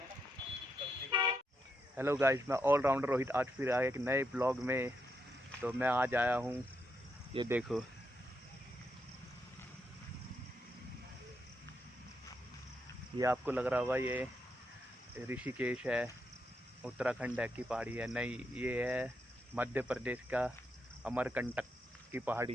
हेलो गाइस, मैं ऑलराउंडर रोहित आज फिर आया एक नए ब्लॉग में। तो मैं आज आया हूँ, ये देखो, ये आपको लग रहा होगा ये ऋषिकेश है, उत्तराखंड है की पहाड़ी है। नहीं, ये है मध्य प्रदेश का अमरकंटक की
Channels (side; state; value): both; normal; correlation 0.81